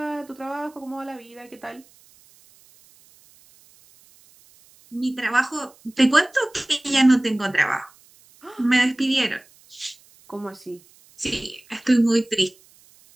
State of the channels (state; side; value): noise; right; hiss, 28 dB below the sound